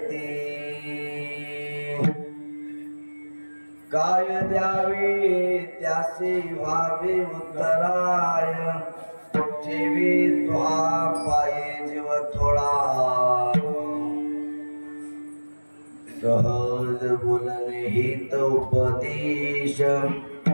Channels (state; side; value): inverted; both; correlation -1.00